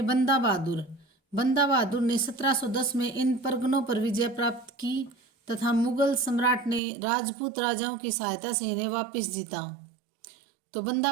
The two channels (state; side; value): drops out; left; at 6.8 s